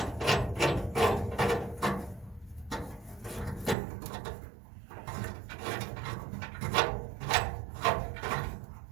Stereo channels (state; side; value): drops out; left; at 3.8 s